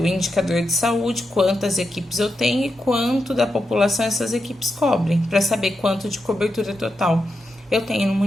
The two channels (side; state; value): both; normal; correlation 0.87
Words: indicador de saúde, quantas equipes eu tenho e quanto da população essas equipes cobrem, para saber quanto de cobertura total eu tenho no